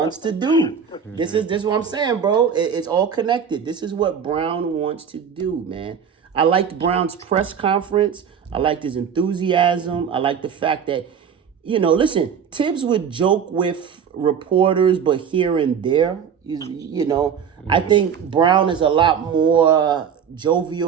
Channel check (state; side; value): quieter; left; 7.4 dB